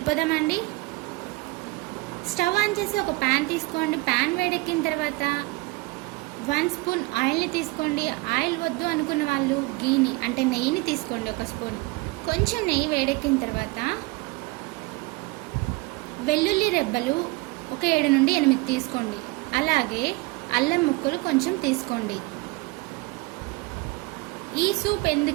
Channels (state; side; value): quieter; left; 23.4 dB